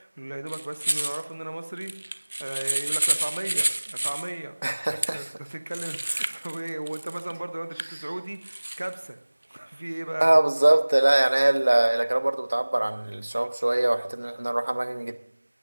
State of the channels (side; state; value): both; inverted; correlation -1.00